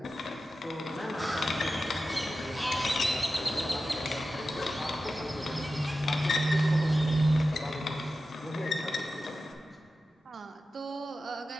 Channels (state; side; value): normal; both; correlation 0.93